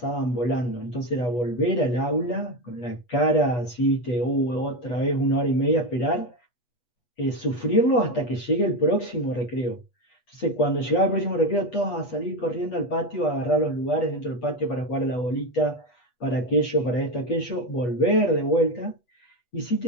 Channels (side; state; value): right; late; 8.3 ms